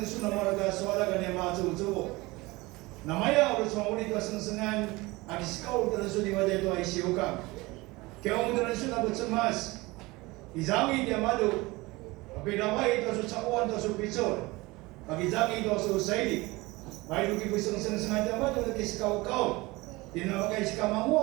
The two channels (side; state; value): left; quieter; 22.1 dB